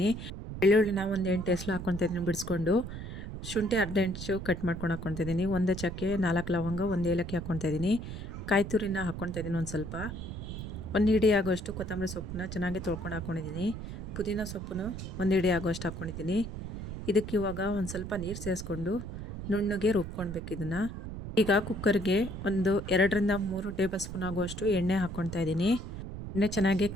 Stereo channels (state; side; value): noise; right; rumble, 8 dB below the sound